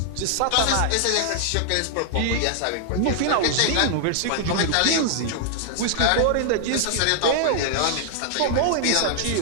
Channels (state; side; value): different; both; correlation -0.01